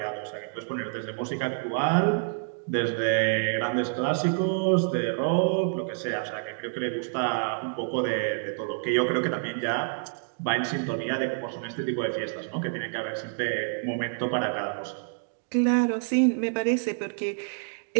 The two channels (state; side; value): silent; left; 59 dB below the other